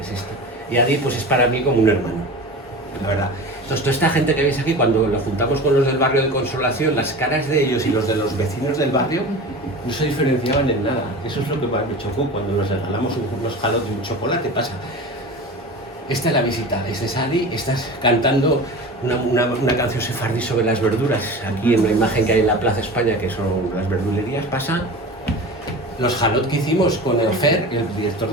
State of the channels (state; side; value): normal; both; correlation 0.33